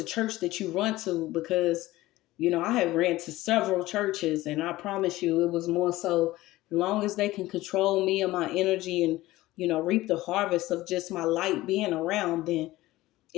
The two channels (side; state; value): right; quieter; 17.5 dB